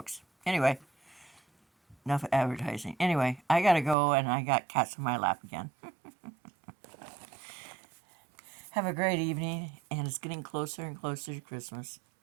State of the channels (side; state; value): left; drops out; at 4.0 s